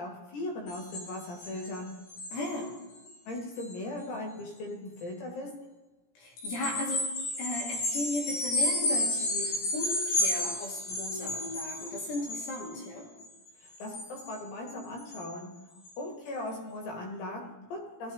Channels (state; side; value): late; right; 17 ms